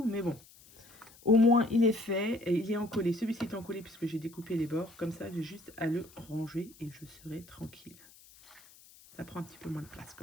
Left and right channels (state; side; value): noise; left; hiss, 24 dB below the sound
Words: mais bon. Au moins, il est fait et il est encollé. Celui-ci est encollé puisque j'ai découpé les bords. Comme ça, j'ai juste à le ranger et je serai tranquille. Ça prend un petit peu moins de place